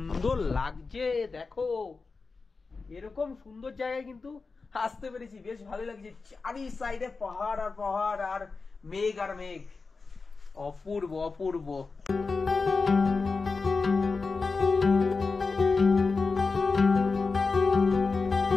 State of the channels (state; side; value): quieter; right; 4.3 dB